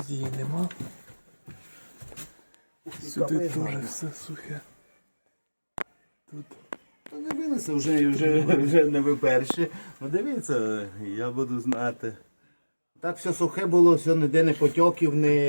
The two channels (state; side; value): inverted; both; correlation -1.00